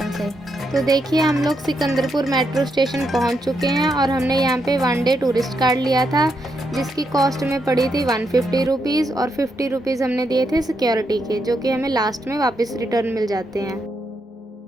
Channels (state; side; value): normal; both; correlation 0.81